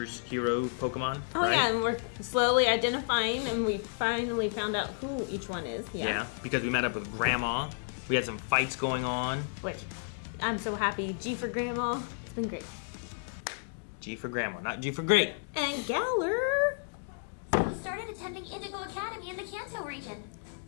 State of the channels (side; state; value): right; silent; digital silence